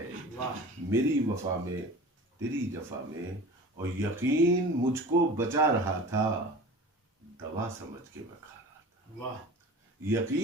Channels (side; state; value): both; normal; correlation 0.38